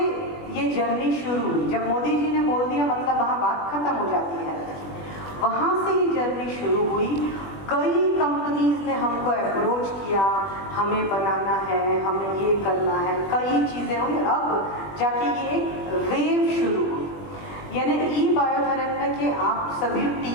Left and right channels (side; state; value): right; late; 20 ms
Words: ये जर्नी शुरू हुई। जब मोदी जी ने बोल दिया मतलब वहाँ बात खत्म हो जाती है। वहाँ से ये जर्नी शुरू हुई। कई कंपनीज ने हमको अप्रोच किया, हमें बनाना है, हमें ये करना है, कई चीज़ें हुई। अब जाके ये एक वेव शुरू हुई, यानी ई-बायोथरन में कि आप सभी